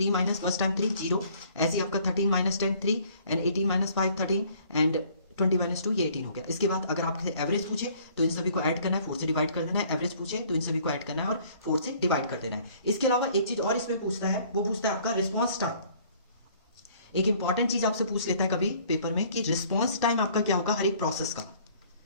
माइनस बस टाइम 3 0, ऐसे आपका 13 माइनस 10 3, एंड 18 माइनस 5 13, एंड 20 - 2 ये 18 हो गया। इसके बाद अगर आपसे एवरेज पूछे तो इन सभी को ऐड करना है, 4 से डिवाइड कर देना है। एवरेज पूछे तो इन सभी को ऐड करना है और 4 से डिवाइड कर देना है। इसके अलावा एक चीज और इसमें पूछता है, वो पूछता है आपका रिस्पॉन्स टाइम। एक इंपॉर्टेंट चीज आपसे पूछ लेता है कभी पेपर में कि रिस्पॉन्स टाइम आपका क्या होगा हर एक प्रोसेस का,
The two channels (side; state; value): both; inverted; correlation -0.57